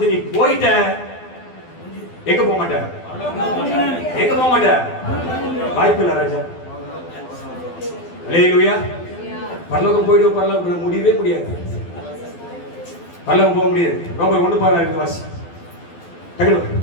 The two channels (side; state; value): right; late; 12 ms